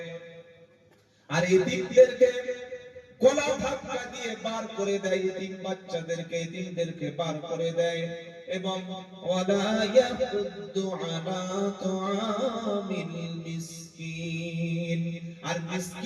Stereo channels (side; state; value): both; identical; correlation 1.00